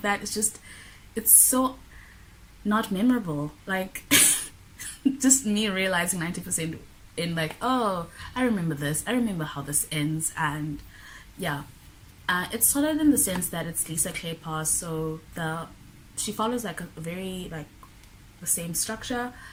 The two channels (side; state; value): both; identical; correlation 1.00